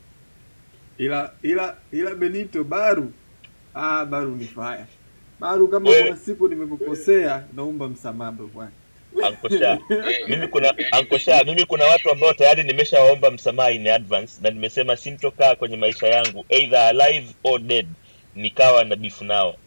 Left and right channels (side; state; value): both; inverted; correlation -1.00